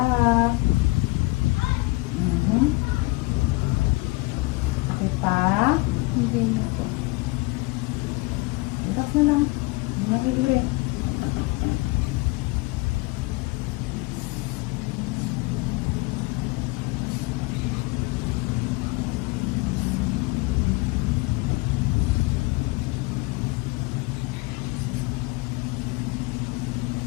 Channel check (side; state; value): right; quieter; 24.1 dB